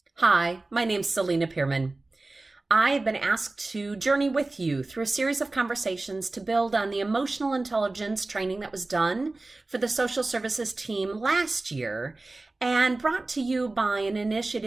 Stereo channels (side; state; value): left; quieter; 3.1 dB